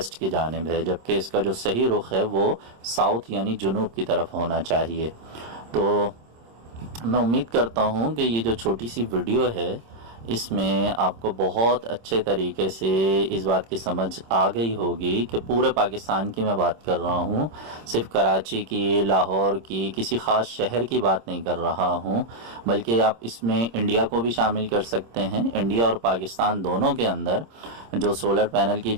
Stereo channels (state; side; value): late; left; 26 ms